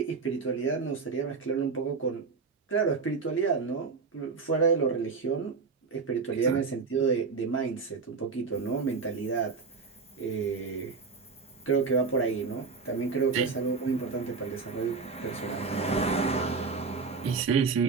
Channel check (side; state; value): left; quieter; 4.9 dB